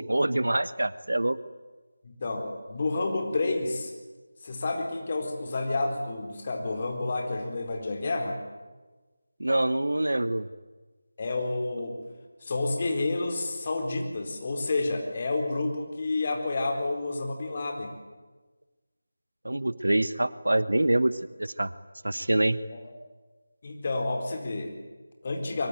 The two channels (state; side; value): inverted; both; correlation -0.95